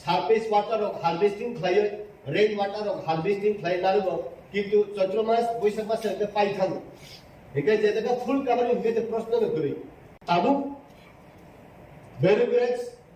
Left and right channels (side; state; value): both; identical; correlation 1.00